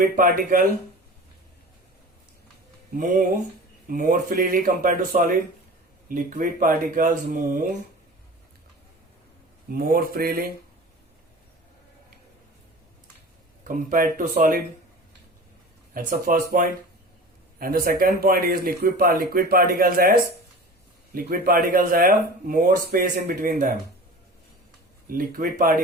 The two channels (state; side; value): normal; both; correlation 0.37